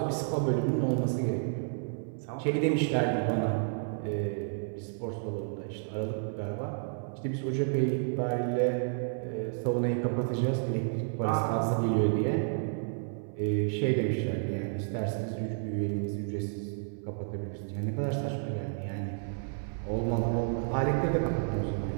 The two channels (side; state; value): left; silent; 57 dB below the other